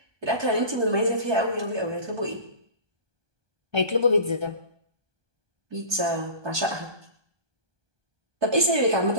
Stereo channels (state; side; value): late; left; 1.2 ms